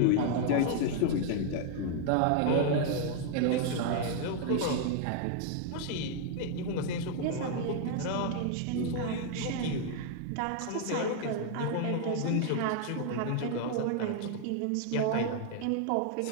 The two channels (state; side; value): different; both; correlation 0.00